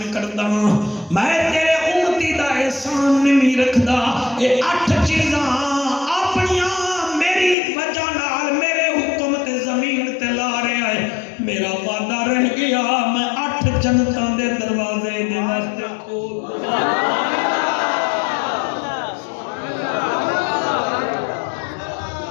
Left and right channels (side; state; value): right; drops out; at 7.6 s